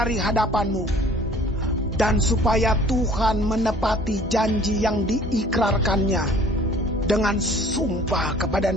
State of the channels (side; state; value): both; normal; correlation 0.51